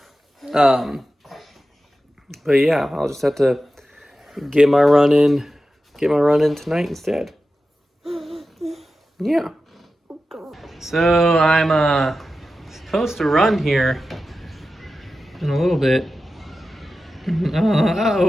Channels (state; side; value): normal; both; correlation 0.93